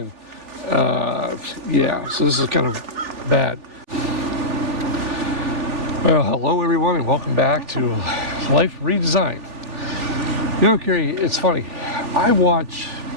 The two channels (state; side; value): late; left; 3.4 ms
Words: yeah, so this is kind of bad. Well, hello everyone and welcome back to Life Redesigned. You know, Carrie, it's funny. I watch